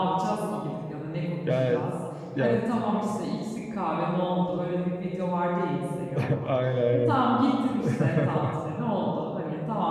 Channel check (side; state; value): both; identical; correlation 1.00